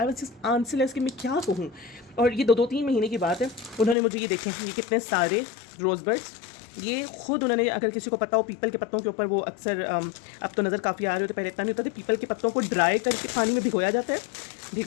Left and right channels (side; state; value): right; drops out; at 4.0 s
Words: was just answerless कि मैं क्या कहूँ। और ये 2-3 महीने की बात है, उन्होंने मुझे ये देखें, ये कितने सारे रोज़ बड्स, ये खुद उन्होंने, अगर किसी को पता हो पीपल के पत्तों के ऊपर वो अक्सर अब तो नज़र काफ़ी आ रही होती है, पहले इतना नहीं होता था, पीपल के पत्तों को ड्राई करके पानी में भिगोया जाता है,